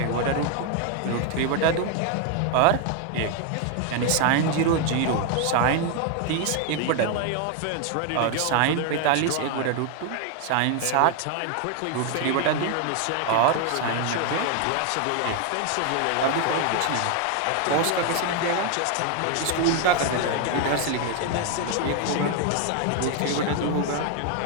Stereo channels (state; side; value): different; both; correlation 0.01